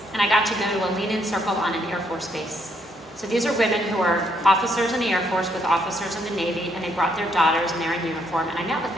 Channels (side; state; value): both; normal; correlation 0.72